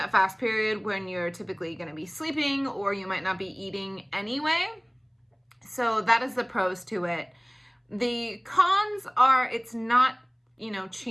fast period when you're typically going to be sleeping or you might not be eating anyway. So that is the pros to it. The cons are it's not,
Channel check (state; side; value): identical; both; correlation 1.00